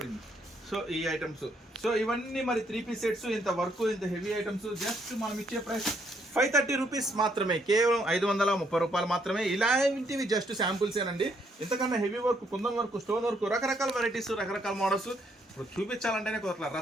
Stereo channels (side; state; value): both; normal; correlation 0.71